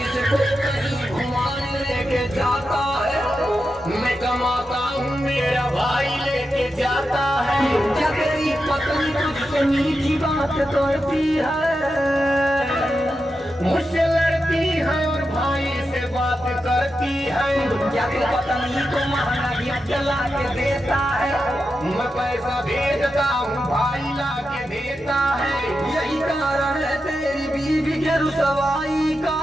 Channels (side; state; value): both; normal; correlation 0.89